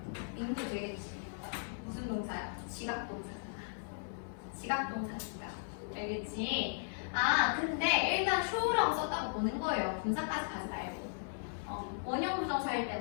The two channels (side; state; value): right; silent; 53 dB below the other